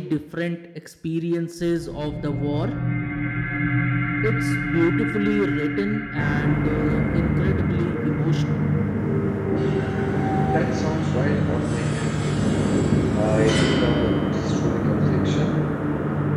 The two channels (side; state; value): both; identical; correlation 1.00